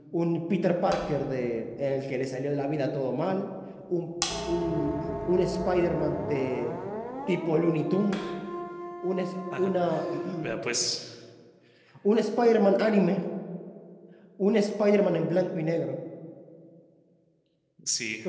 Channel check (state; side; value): identical; both; correlation 1.00